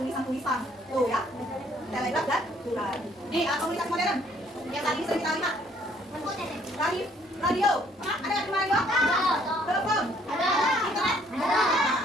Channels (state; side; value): normal; both; correlation 0.63